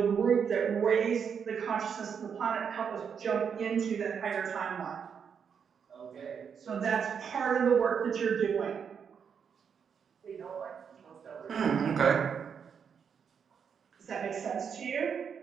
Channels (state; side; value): quieter; left; 7.0 dB